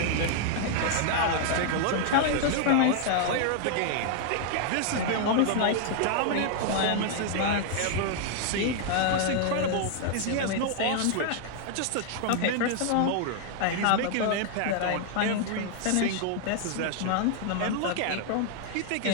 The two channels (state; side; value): different; both; correlation 0.00